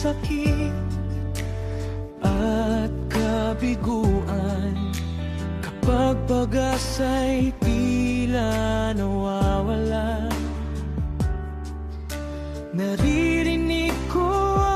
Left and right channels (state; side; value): identical; both; correlation 1.00